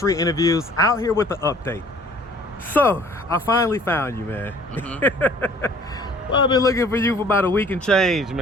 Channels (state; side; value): normal; both; correlation 0.54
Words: Interviews out here with the update. So, I finally found you, man. Well, I've been looking for you for about a week and change,